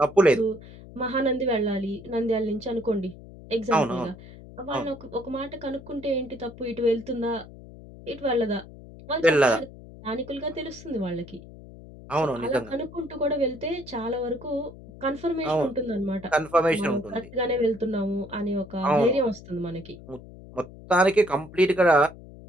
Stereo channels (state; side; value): noise; left; hum, 18 dB below the sound